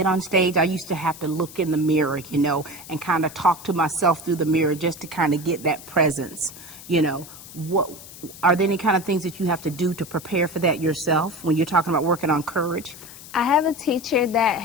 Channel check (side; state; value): left; noise; hiss, 16 dB below the sound